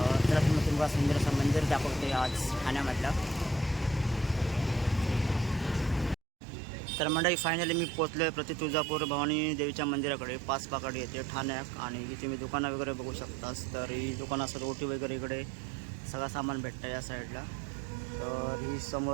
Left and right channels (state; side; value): drops out; left; at 6.2 s